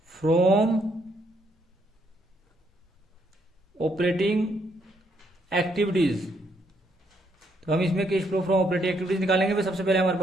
from operating activities. तो हम इसमें cash flow from operating activities निकालेंगे। सबसे पहले हमारे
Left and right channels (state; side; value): normal; both; correlation 0.72